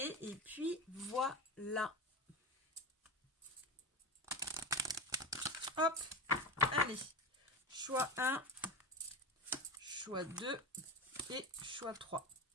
Et puis, voilà. Hop, allez. Choix 1, choix 2 et choix 3.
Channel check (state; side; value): normal; both; correlation 0.23